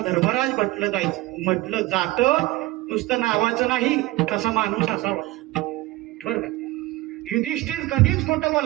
धर्मराज म्हटलं जातं. नुसतं नावाचं नाही, तसा माणूस असावा. बरं का, युधिष्ठिर कधीच खोटं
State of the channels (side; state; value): left; quieter; 18.8 dB